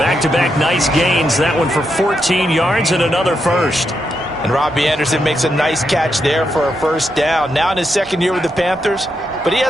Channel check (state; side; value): normal; both; correlation 0.82